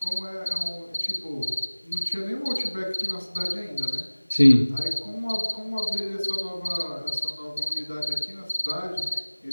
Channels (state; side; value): inverted; both; correlation -1.00